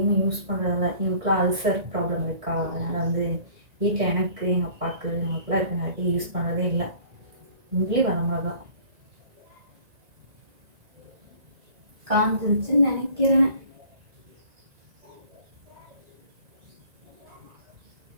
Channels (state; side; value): late; left; 1.9 ms